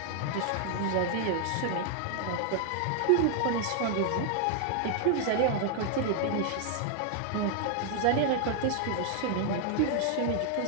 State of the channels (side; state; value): both; different; correlation 0.00